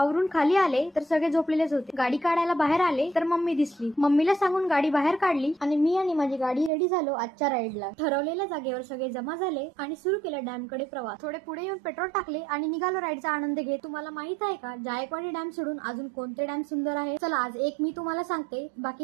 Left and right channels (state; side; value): drops out; left; at 6.7 s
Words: खाली आले तर सगळे झोपलेलेच होते. गाडी काढायला बाहेर आले तर मम्मी दिसली. मम्मीला सांगून गाडी बाहेर काढली आणि मी आणि माझी गाडी रेडी झालो आजच्या राईडला. ठरवलेल्या जागेवर सगळे जमा झाले आणि सुरू केला डॅम कडे प्रवास. थोडे पुढे येऊन पेट्रोल टाकले आणि निघालो राईडचा आनंद घेत. तुम्हाला माहित आहे का जायकवाडी डॅम सोडून अजून कोणते डॅम सुंदर आहे? चला आज एक मी तुम्हाला सांगते,